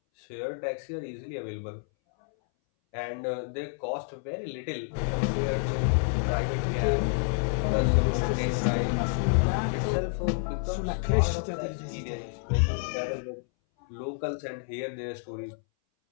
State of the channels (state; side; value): silent; right; 59 dB below the other